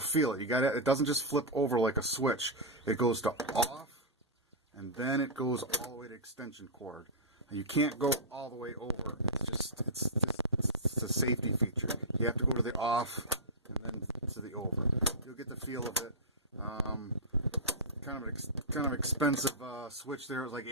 it. It doesn't just flip over like a switch. It goes to off, and then it goes all the way to extension cord. And you can't go all the way over. It's a safety feature. You have to go to the off and then to the over. You'll get the feel of it. Kind of expensive switch there. It was like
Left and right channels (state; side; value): normal; both; correlation -0.10